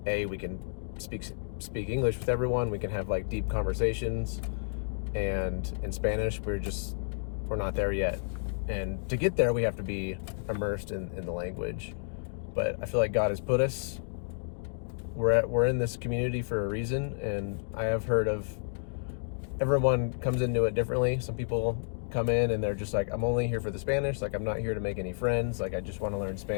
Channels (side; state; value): right; silent; digital silence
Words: we can speak English with everyone, we can have like deep conversations, and in Spanish we're not there yet. And to get there, we have to be immersed in the language. But I feel like God has put us. We're in this community for a reason, and I have heard of everyone comes into it differently. Some people come in and they're just like, I'm only here for the Spanish. Like, I'm not here to make any friends. Like, I just want to learn